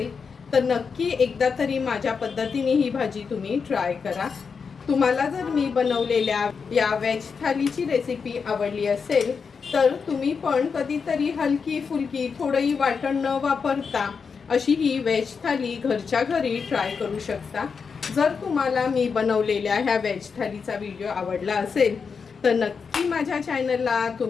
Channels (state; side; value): quieter; right; 5.6 dB